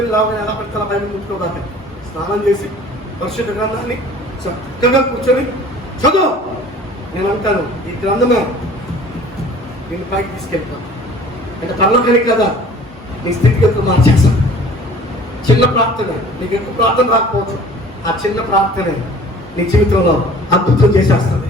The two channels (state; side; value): normal; both; correlation 0.48